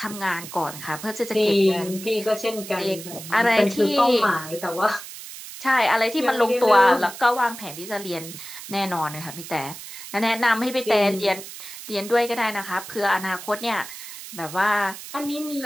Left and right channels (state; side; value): noise; right; hiss, 12 dB below the sound